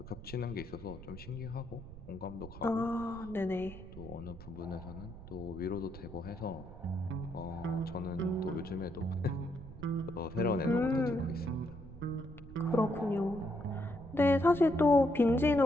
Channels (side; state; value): right; noise; rumble, 15 dB below the sound